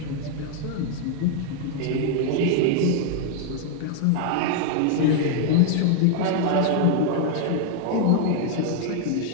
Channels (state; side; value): different; both; correlation 0.00